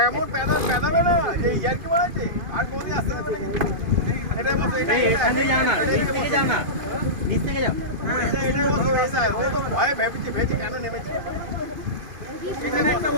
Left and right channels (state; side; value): late; left; 2.5 ms